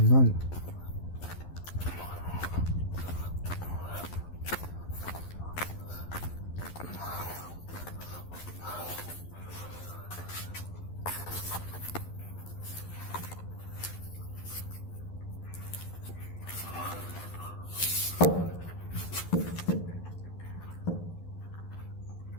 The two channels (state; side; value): late; right; 11 ms